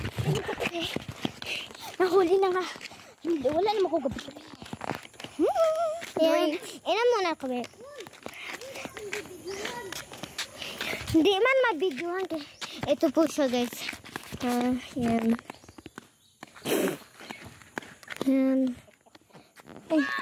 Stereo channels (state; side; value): identical; both; correlation 1.00